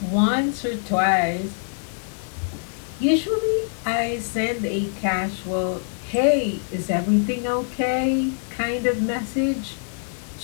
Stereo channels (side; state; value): right; silent; digital silence